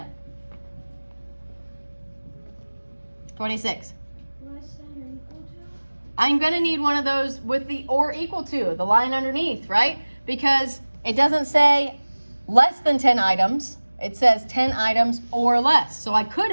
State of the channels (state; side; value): inverted; both; correlation -1.00